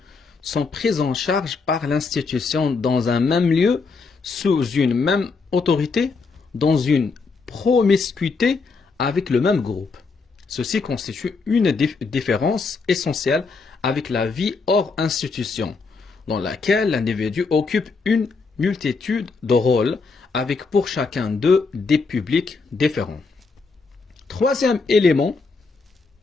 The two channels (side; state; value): right; quieter; 4.4 dB